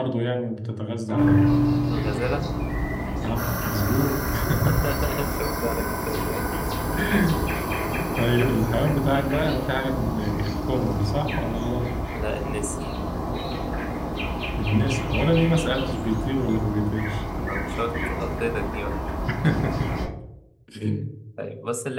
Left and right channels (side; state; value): both; identical; correlation 1.00